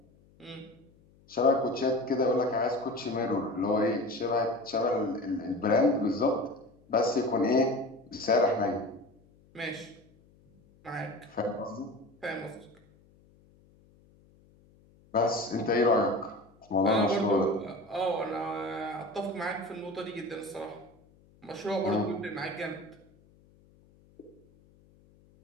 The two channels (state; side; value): noise; left; hum, 29 dB below the sound